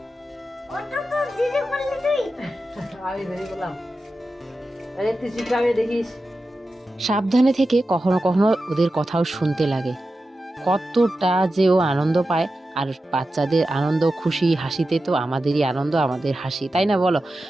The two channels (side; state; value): both; normal; correlation 0.92